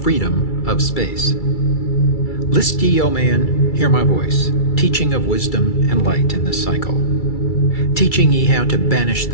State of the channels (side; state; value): right; late; 2.3 ms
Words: Freedom of Space. List ye, O man, hear my voice, teaching of wisdom and light in this cycle. Teaching ye how to banish